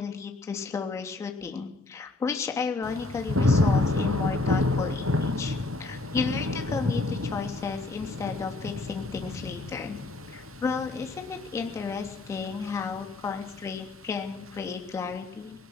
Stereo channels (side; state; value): right; quieter; 3.3 dB